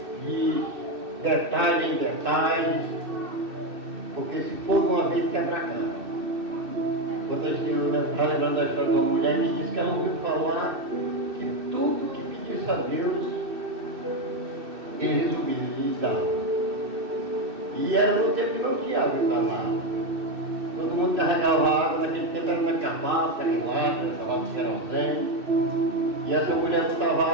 de detalhe em detalhe, porque se for de uma vez quebra a cara. Quando eu estava lembrando da história de uma mulher que disse que ela ouviu falar que tudo que pedisse a Deus, ele resolvia lhe dar. E era no tempo que não tinha água para nada. Todo mundo carregava água, naquele tempo era na cabaça, carregava de querosene. E essa mulher botava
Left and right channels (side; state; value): left; late; 2.6 ms